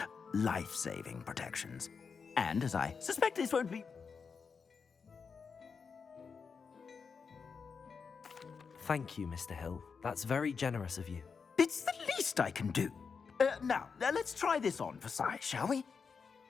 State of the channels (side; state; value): right; quieter; 5.6 dB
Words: Life-saving protections. And as I suspect this won't be... Thank you, Mr. Hill. That's very generous of you. It's the least I can do. Now, let's try this on for size, shall we?